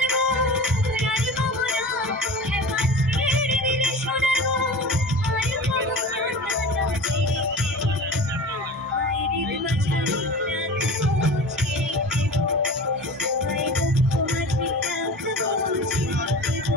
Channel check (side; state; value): both; normal; correlation 0.35